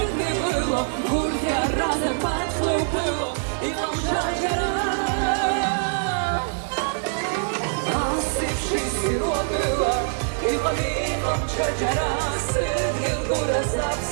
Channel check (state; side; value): silent; left; digital silence